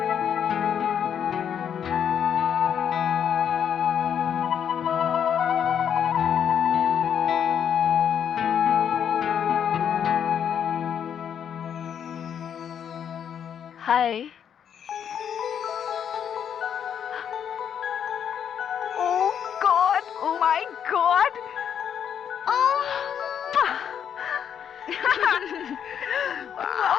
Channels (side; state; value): right; quieter; 8.5 dB